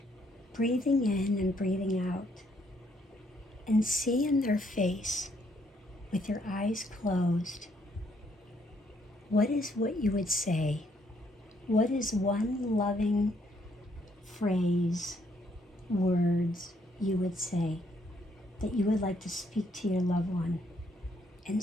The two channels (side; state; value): both; normal; correlation 0.70